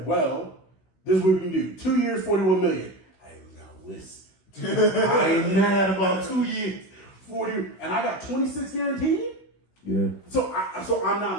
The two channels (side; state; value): right; late; 16 ms